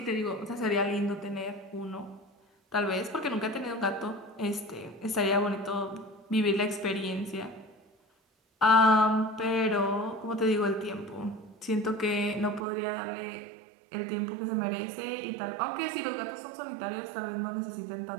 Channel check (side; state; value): left; drops out; at 12.6 s